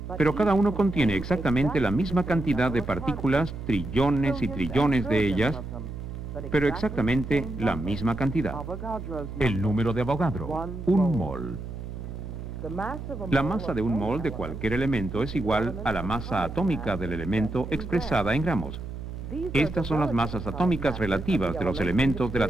pero cada uno contiene exactamente la misma cantidad de partículas, trillones y trillones de ellas, pero exactamente la misma cantidad. El número de Avogadro, un mol. La masa de un mol de cualquier elemento es igual a la masa atómica del elemento expresada en gramos. Estas son las masas atómicas relativas de los elementos de la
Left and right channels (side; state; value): right; noise; hum, 9 dB below the sound